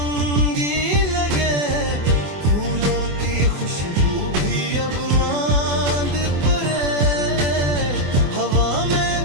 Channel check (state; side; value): late; left; 24 ms